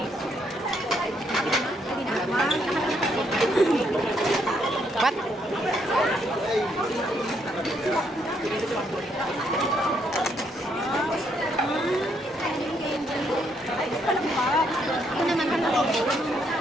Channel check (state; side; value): normal; both; correlation 0.73